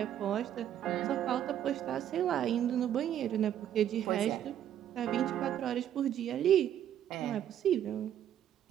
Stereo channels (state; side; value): quieter; left; 10.6 dB